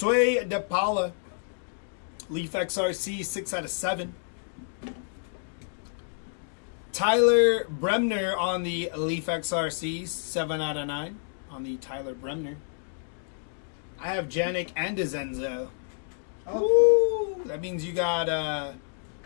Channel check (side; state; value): right; silent; digital silence